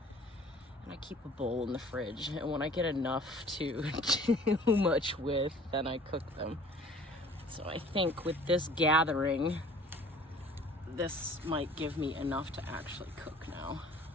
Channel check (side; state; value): both; normal; correlation 0.51